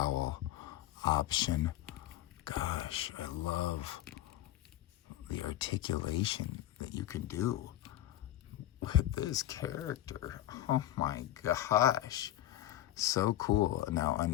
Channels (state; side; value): quieter; right; 13.7 dB